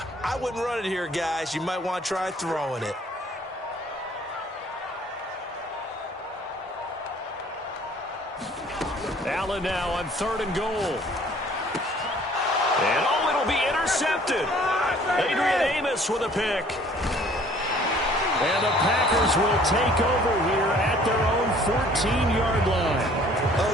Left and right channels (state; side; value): normal; both; correlation 0.55